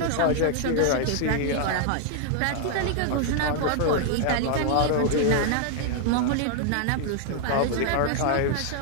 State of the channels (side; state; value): both; different; correlation 0.00